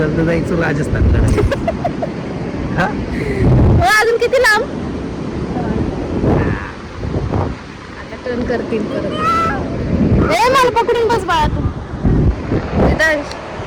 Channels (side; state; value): both; identical; correlation 1.00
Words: जायचं राजस्थानकडे. अजून किती लांब. आता टर्न करतील परत. मला पकडून बस बाळा तू.